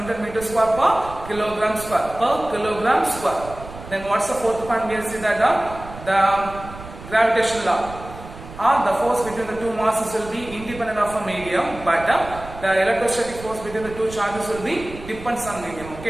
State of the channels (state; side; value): noise; right; rumble, 14 dB below the sound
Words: Newton meter square per kilogram square. Then what's the fourth point? We see that the gravitational law. The force between the two masses will be independent of a medium, but the electrostatic force between the two charges will be depends on medium.